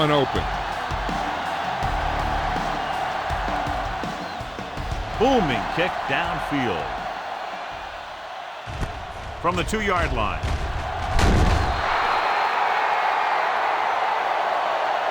open. Booming kick downfield. From the 2-yard line.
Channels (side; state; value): both; identical; correlation 1.00